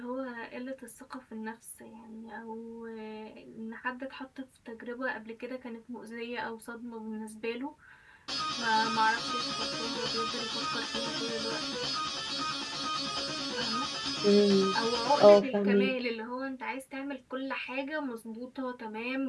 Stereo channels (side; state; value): both; identical; correlation 1.00